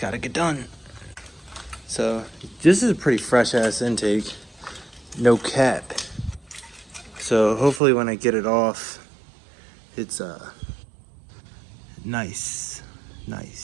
get done. So, this is a pretty fresh ass intake. No cap. So, hopefully when I get it off, it's nice.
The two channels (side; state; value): left; drops out; at 7.8 s